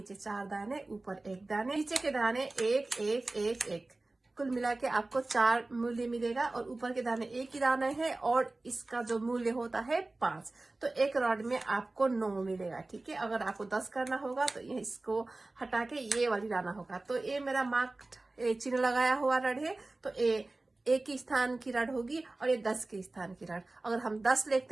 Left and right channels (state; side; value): quieter; left; 3.0 dB